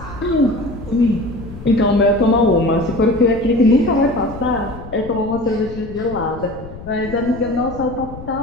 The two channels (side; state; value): left; noise; rumble, 14 dB below the sound